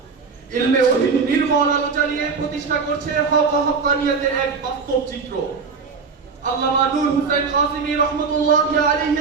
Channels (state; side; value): quieter; left; 5.1 dB